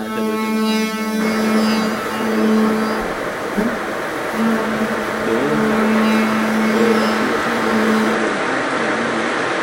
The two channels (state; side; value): identical; both; correlation 1.00